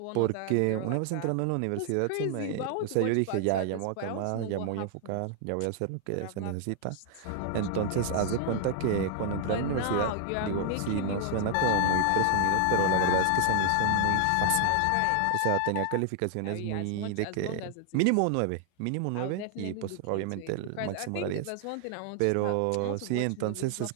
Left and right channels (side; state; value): both; different; correlation 0.00